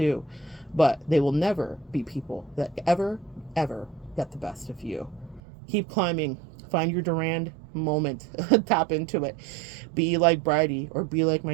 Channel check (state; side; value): drops out; left; at 5.4 s